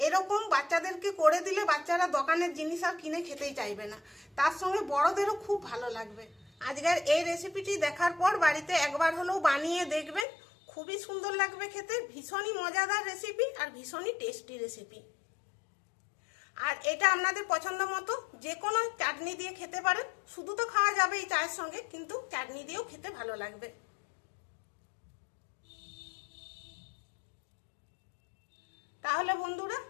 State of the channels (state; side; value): drops out; right; at 10.2 s